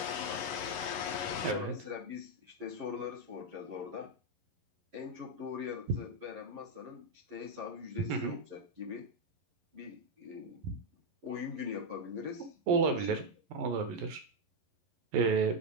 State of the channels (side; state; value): left; late; 11 ms